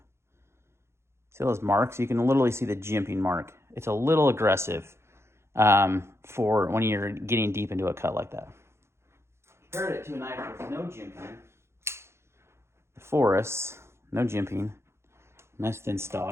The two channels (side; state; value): left; late; 0.13 ms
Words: See those marks? You can literally see the jimping mark. It's a little aggressive for when you're getting deep into a cut like that. Compared it to a knife with no jimping. The Forest, no jimping, nice thin